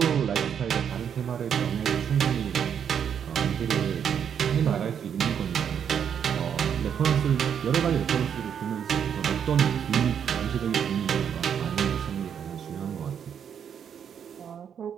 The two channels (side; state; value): left; quieter; 8.1 dB